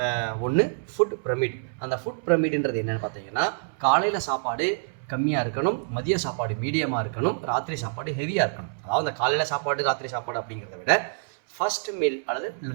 ஒன்று ஃபுட் பிரமிட். அந்த ஃபுட் பிரமிடுன்றது என்னென்னு பார்த்தீங்கன்னா, காலையில் சாப்பாடு கம்மியாக இருக்கணும், மதிய சாப்பாடு மீடியமாக இருக்கணும், ராத்திரி சாப்பாடு ஹெவியாக இருக்கணும். அதாவது அந்த காலையில் சாப்பாடு ராத்திரி சாப்பாடு அப்படிங்கிறத விட ஃபஸ்ட் மீல் அல்லது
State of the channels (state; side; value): silent; left; 61 dB below the other